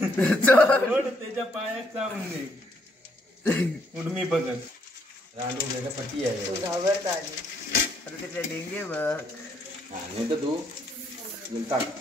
त्याच्या पायात चावून दे. उडमी बघत रांडू वेगळ्या पट्टी आहे. घाबरत आली. अरे त्याच्या डेंगे बघ. हा नाही तर तू टाक.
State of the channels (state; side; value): normal; both; correlation 0.71